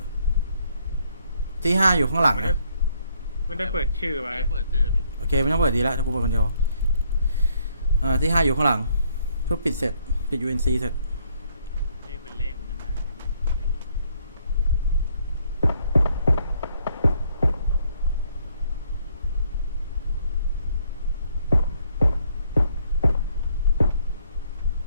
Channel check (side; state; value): both; inverted; correlation -0.68